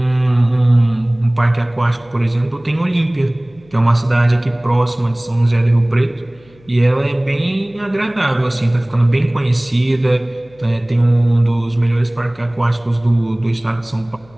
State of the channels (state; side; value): noise; left; hum, 28 dB below the sound